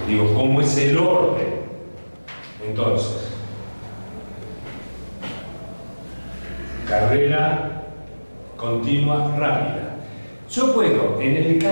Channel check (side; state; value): both; inverted; correlation -1.00